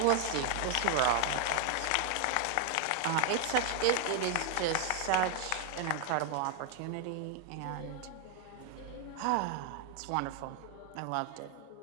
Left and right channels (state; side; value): different; both; correlation 0.00